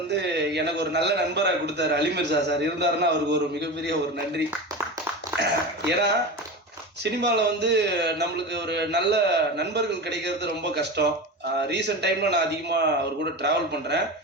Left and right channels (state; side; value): normal; both; correlation 0.26